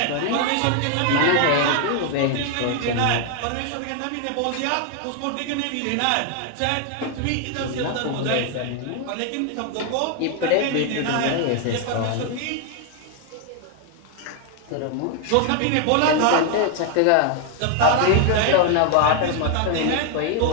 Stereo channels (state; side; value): different; both; correlation 0.00